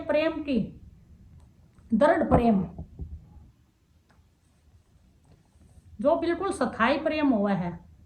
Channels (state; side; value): identical; both; correlation 1.00